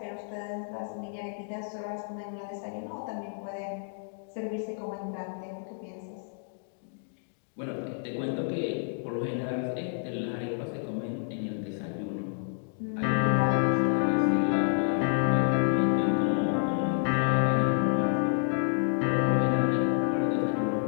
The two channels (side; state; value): right; silent; digital silence